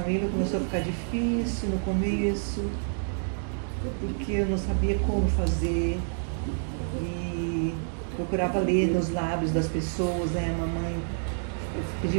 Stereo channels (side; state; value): left; silent; digital silence